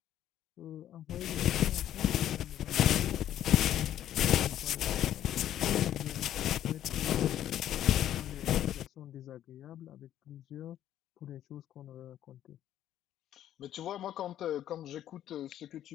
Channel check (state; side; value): quieter; right; 11.6 dB